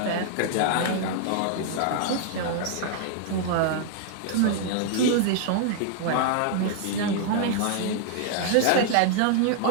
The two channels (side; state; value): both; different; correlation -0.01